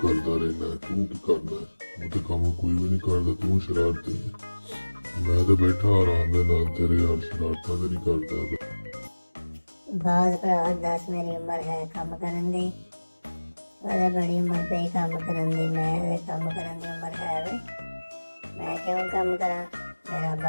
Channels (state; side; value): inverted; both; correlation -1.00